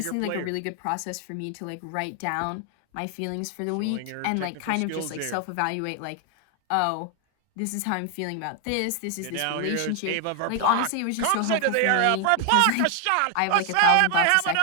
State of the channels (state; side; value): different; both; correlation 0.00